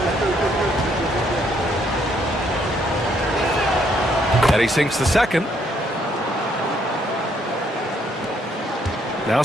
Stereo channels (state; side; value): normal; both; correlation 0.70